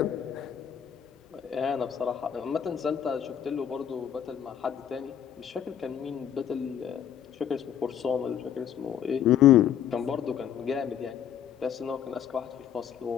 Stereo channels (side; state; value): right; quieter; 9.4 dB